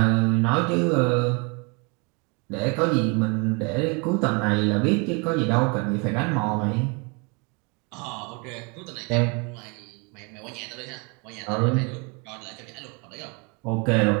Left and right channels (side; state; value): left; quieter; 32.2 dB